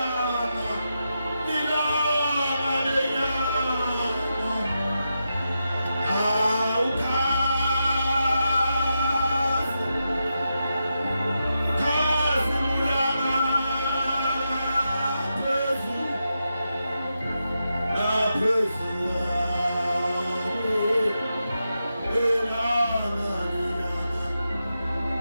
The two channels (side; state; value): both; inverted; correlation -0.87